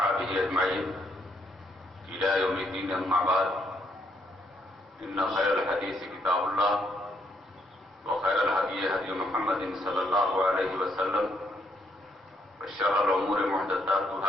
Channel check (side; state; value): both; normal; correlation 0.73